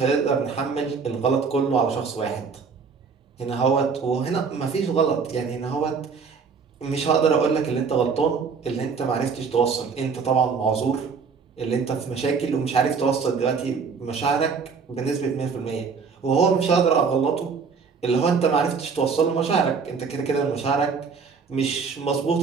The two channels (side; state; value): left; quieter; 5.5 dB